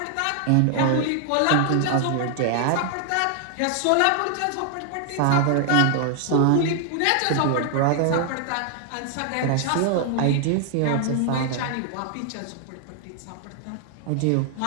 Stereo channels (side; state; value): both; different; correlation 0.00